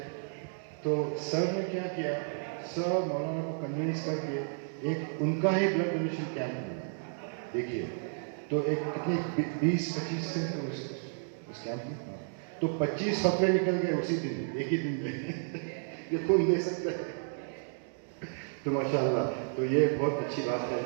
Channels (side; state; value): left; silent; digital silence